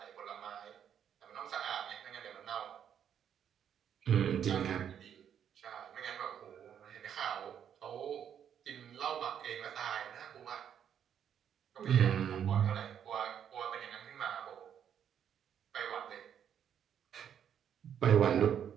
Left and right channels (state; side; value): quieter; left; 8.9 dB